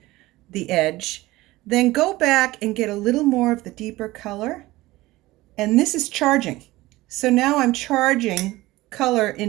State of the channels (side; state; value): left; quieter; 18.6 dB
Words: the edge, then go back and get a little more of the deeper color. And this is charging. So now I'm charging color